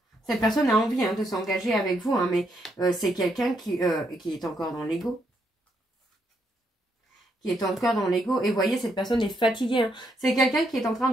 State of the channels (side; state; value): both; normal; correlation 0.77